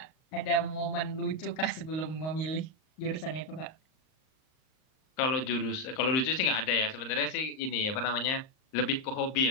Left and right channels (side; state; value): right; late; 38 ms